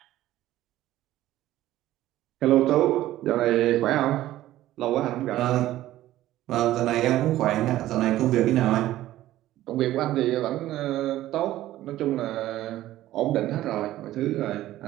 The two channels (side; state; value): left; quieter; 14.6 dB